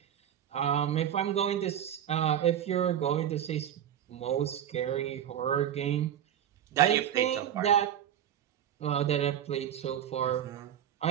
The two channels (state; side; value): quieter; left; 10.2 dB